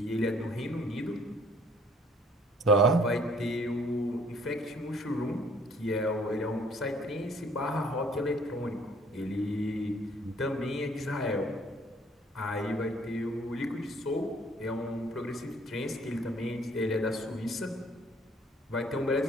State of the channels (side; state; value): both; normal; correlation 0.59